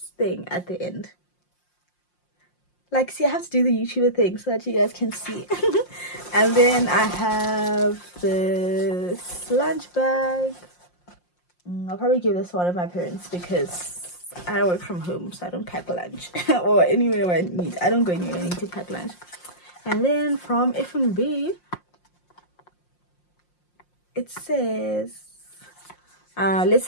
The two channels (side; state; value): right; late; 5.6 ms